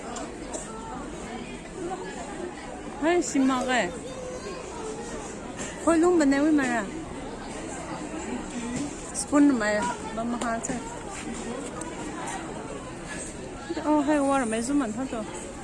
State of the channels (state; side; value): identical; both; correlation 1.00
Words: Ay, simage. Hoy, ba na wi mara? Spoon ma ba mahal sa. Oh, hay water may zuman ha to.